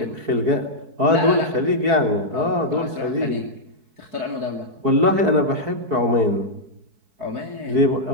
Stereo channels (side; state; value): left; late; 4.6 ms